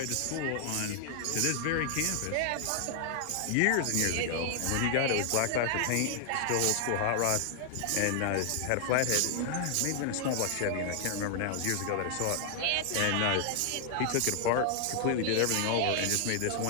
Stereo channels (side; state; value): both; different; correlation 0.00